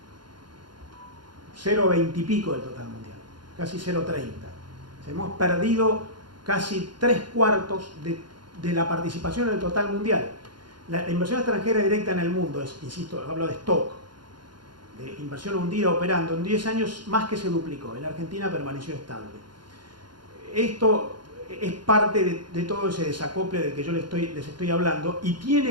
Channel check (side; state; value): left; late; 0.71 ms